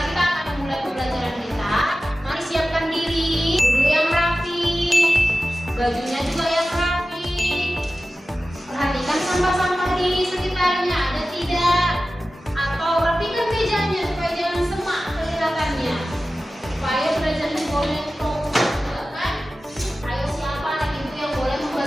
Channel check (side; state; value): both; normal; correlation 0.95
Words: kita akan memulai pembelajaran kita, mari siapkan diri. Dulu yang rapi, bajunya juga yang rapi. Perhatikan sampah-sampah di sekitarnya ada tidak, atau rapikan mejanya supaya jangan semak kelihatannya, supaya belajarnya boleh fokus juga kan. Ayo siapa anak ibu yang boleh